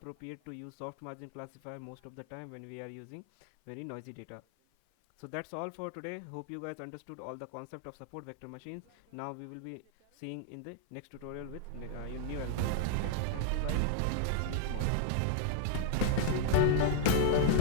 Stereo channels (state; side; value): different; both; correlation -0.01